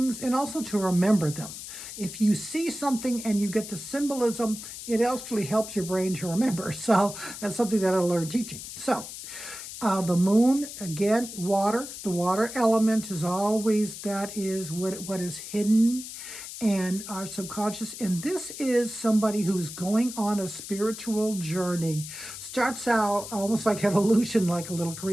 and also to remember them. If you see something and you get the symbolism, it actually helps your brain to remember. So that's something that I learned teaching. So the moon, again, water. The water element is always, that is what is hidden and our subconscious. And this is somebody who's going on a spiritual journey. Starts out almost like evolution, like a little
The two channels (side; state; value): left; noise; hiss, 10 dB below the sound